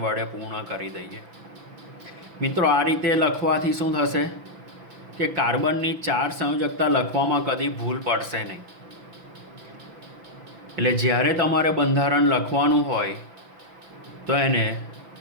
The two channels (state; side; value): late; left; 6.0 ms